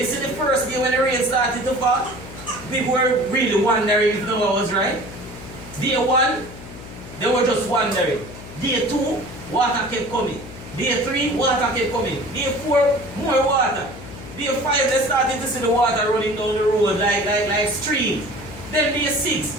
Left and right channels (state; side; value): noise; left; hum, 15 dB below the sound